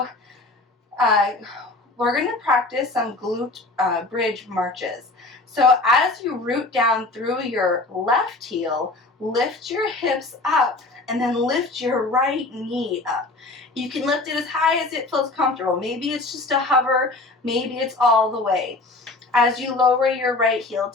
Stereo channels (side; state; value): right; quieter; 3.1 dB